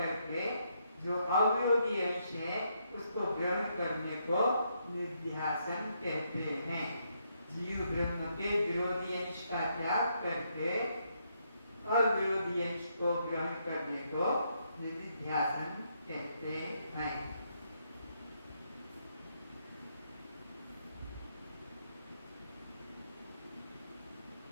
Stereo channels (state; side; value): inverted; both; correlation -0.76